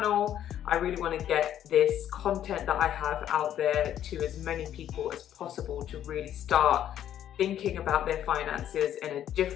I really want to get this content that I have out there to as many people as possible to really start thinking about their finances in a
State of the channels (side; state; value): right; quieter; 10.9 dB